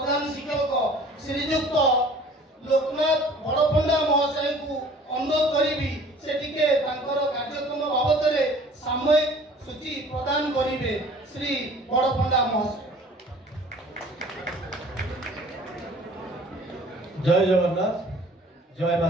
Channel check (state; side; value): normal; both; correlation 0.49